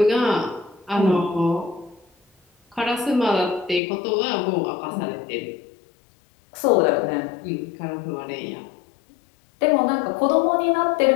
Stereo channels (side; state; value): right; drops out; at 3.8 s